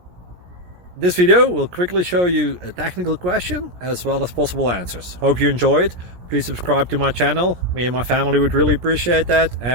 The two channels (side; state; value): left; late; 17 ms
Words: this video will quickly show you a technical question as well as possible answers. Hope you enjoyed. Please subscribe to my channel. Me and my family would really appreciate that,